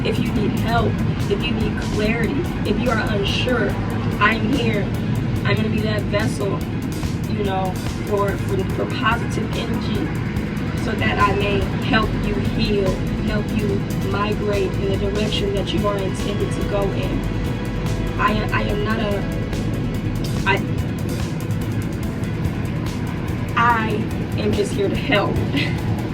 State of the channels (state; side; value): identical; both; correlation 1.00